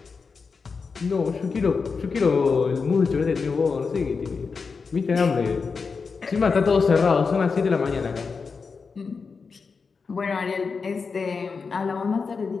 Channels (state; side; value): quieter; right; 5.0 dB